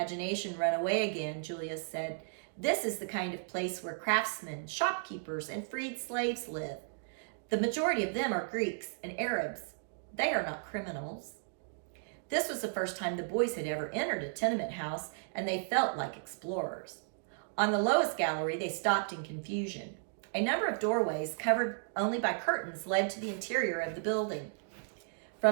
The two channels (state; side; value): silent; left; digital silence